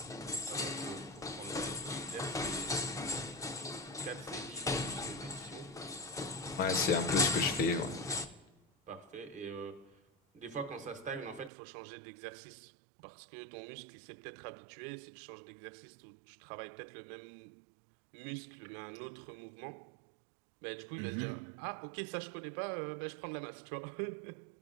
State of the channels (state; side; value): drops out; left; at 11.5 s